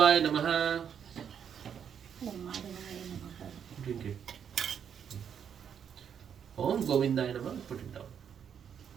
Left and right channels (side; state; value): left; quieter; 8.0 dB